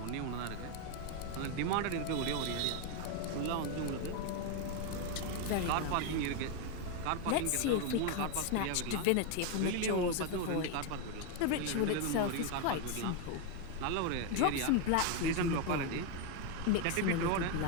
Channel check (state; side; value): different; both; correlation 0.01